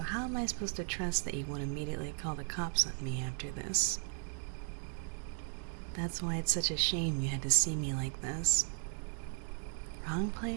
how am I supposed to trust that you won't immediately call the cops on me after this? That's why it's such a shame you had to see me like this. Wrong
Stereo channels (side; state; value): left; silent; 54 dB below the other